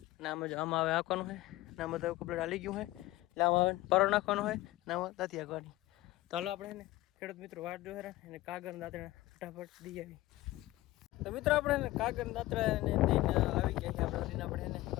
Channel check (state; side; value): quieter; right; 17.9 dB